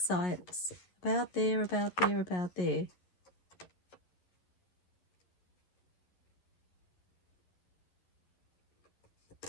size. About there, about there, about there.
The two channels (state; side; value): late; right; 11 ms